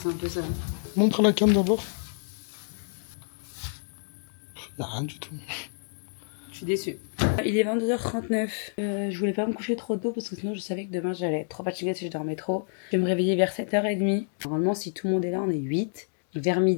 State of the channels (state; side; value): silent; right; digital silence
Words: un peu ça. Montre la cam d'abord. Il n'y a rien du tout. Je suis déçue. Il est 22h39. Je voulais pas me coucher trop tôt parce que sinon je savais que demain j'allais être trop fatiguée si je dormais trop. Je vais me réveiller vers 7h30. Normalement, si tout le monde est là, on est 8. Vers